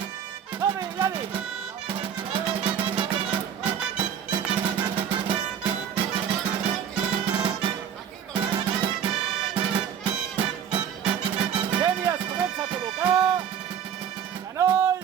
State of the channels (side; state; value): left; quieter; 8.6 dB